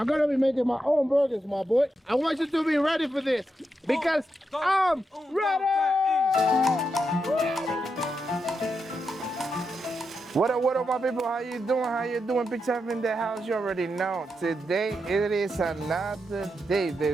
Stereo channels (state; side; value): normal; both; correlation 0.85